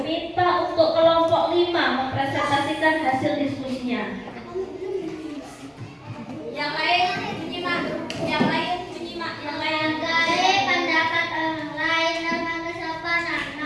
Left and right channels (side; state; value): both; identical; correlation 1.00